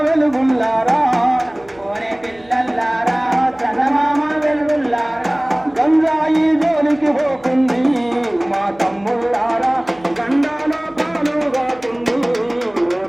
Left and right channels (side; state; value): right; noise; hum, 28 dB below the sound